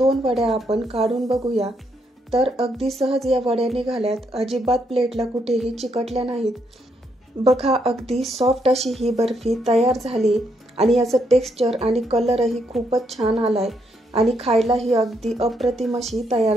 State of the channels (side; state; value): both; normal; correlation 0.76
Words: वड्या आपण काढून बघूया। तर अगदी सहज या वड्या निघाल्यात, अजिबात प्लेटला कुठेही चिकटल्या नाहीत। बघा अगदी सॉफ्ट अशी ही बर्फी तयार झाली आणि याचं टेक्स्चर आणि कलरही खूपच छान आलाय आणि खायलाही अगदी अप्रतिम अशी